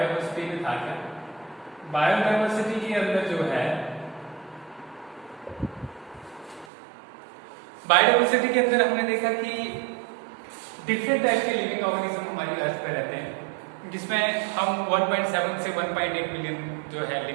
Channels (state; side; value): drops out; left; at 6.7 s